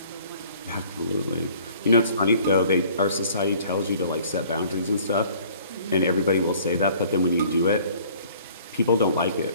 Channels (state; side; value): inverted; both; correlation -0.54